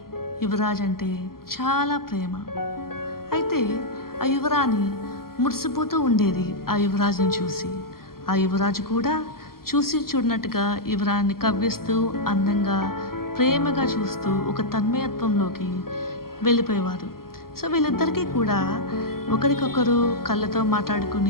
యువరాజు అంటే చాలా ప్రేమ. అయితే ఆ యువరాణి మురిసిపోతూ ఉండేది ఆ యువరాజుని చూసి. ఆ యువరాజు కూడా చూసి చూడనట్టుగా యువరాణిని కవ్విస్తూ అందంగా ప్రేమగా చూస్తూ ఒక తన్మయత్వంలోకి వెళ్ళిపోయేవారు. సో వీళ్ళిద్దరికీ కూడా ఒకరికొకరు కళ్ళతో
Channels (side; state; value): right; late; 0.93 ms